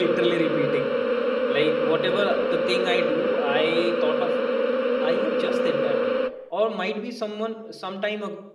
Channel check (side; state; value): both; identical; correlation 1.00